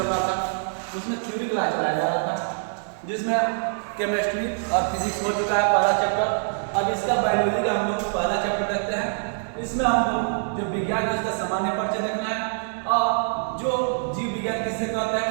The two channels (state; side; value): silent; left; digital silence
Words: रहा था उसमें थ्योरी क्लास चलाया जा रहा था, जिसमें केमिस्ट्री और फिजिक्स हो चुका है पहला चैप्टर। अब इसका बायोलॉजी का हम लोग पहला चैप्टर देखते हैं। इसमें हम लोग जो विज्ञान है उसका सामान्य परिचय देखना है और जो जीव विज्ञान किससे कहते हैं,